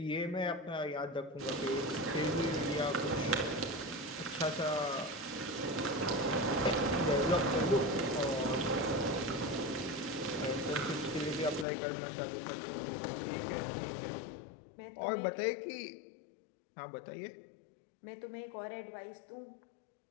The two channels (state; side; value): drops out; right; at 11.7 s